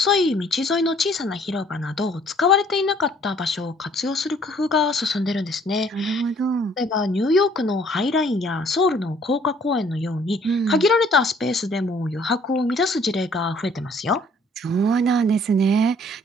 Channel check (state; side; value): normal; both; correlation 0.59